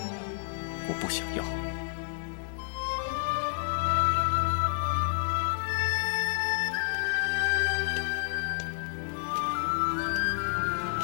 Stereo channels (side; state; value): right; silent; 58 dB below the other